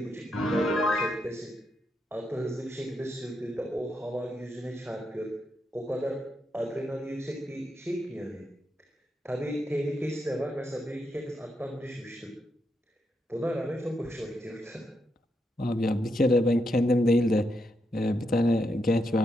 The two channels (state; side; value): normal; both; correlation 0.82